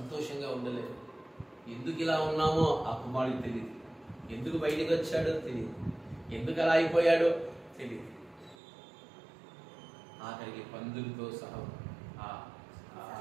ఉండలేరు. ఎందుకు ఇలా ఉన్నామో ఆ కుమారుడికి తెలియదు, ఎందుకు బయటికి వచ్చాడో తెలియదు, ఎందుకు అలా అయిపోయాడో తెలియదు. ఆఖరికి పందులతో సహా ఆ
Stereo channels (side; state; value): left; drops out; at 8.6 s